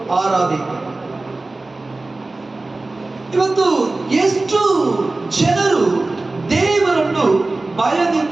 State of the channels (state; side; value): quieter; left; 3.1 dB